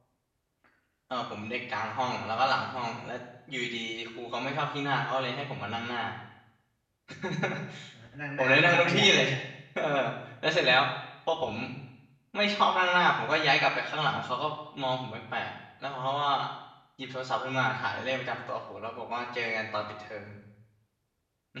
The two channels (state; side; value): identical; both; correlation 1.00